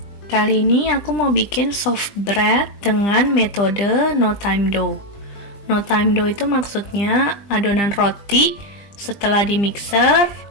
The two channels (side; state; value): right; late; 20 ms